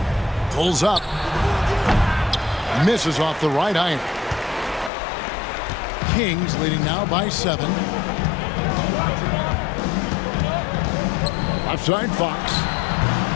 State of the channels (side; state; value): right; drops out; at 4.9 s